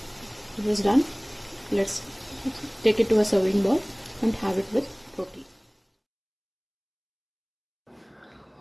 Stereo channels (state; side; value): identical; both; correlation 1.00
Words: It is done. Let's take it to a serving bowl and have it with roti.